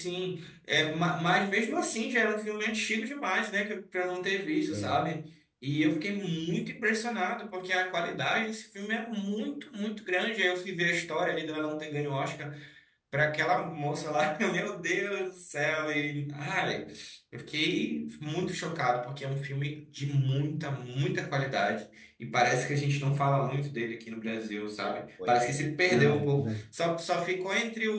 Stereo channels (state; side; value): identical; both; correlation 1.00